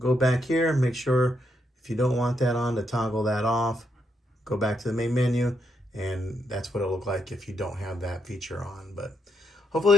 back here and make sure if you don't want that on to toggle that off. Go back to the main menu, and that's what it'll look like if you don't have that feature on. But hopefully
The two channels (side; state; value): both; normal; correlation 0.78